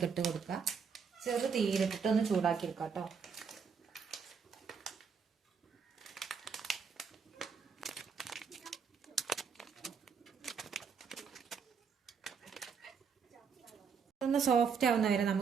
ഇട്ട് കൊടുക്കാം. ചെറു തീയിലിട്ടിട്ട് ഒന്ന് ചൂടാക്കിയെടുക്കാം കേട്ടോ. ഒന്ന് സോഫ്റ്റ് ആവുന്ന വരെ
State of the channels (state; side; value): quieter; left; 6.2 dB